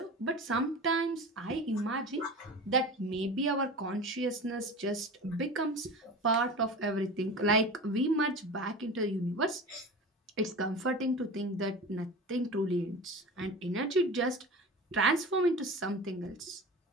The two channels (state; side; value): normal; both; correlation 0.32